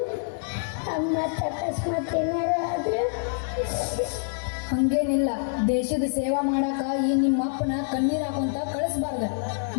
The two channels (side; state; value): right; silent; digital silence